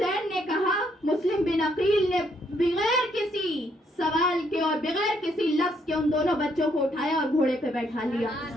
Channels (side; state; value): both; normal; correlation 0.72